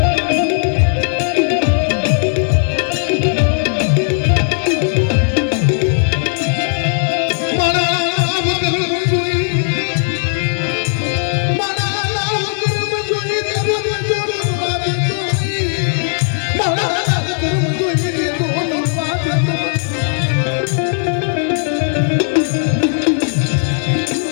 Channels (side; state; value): right; silent; 60 dB below the other